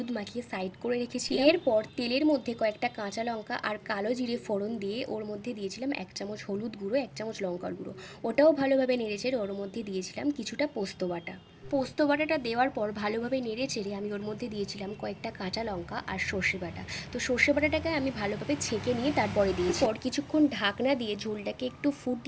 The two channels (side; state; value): both; identical; correlation 1.00